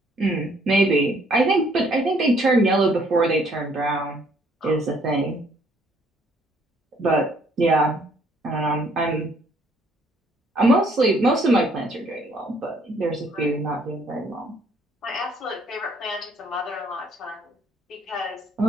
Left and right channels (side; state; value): both; normal; correlation 0.64